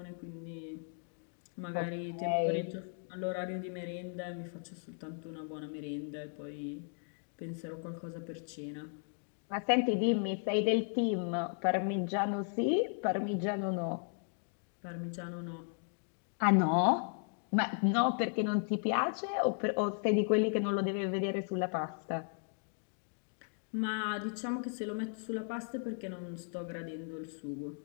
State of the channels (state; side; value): silent; right; 54 dB below the other